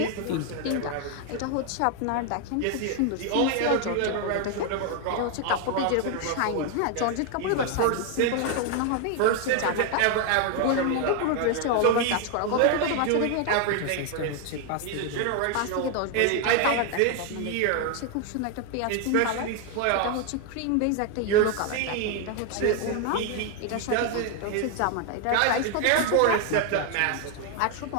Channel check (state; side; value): different; both; correlation 0.01